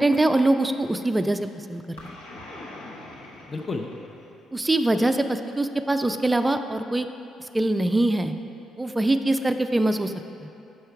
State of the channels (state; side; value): normal; both; correlation 0.94